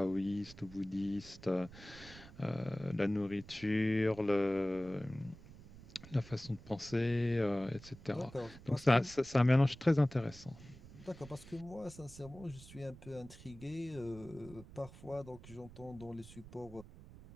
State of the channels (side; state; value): right; noise; rumble, 18 dB below the sound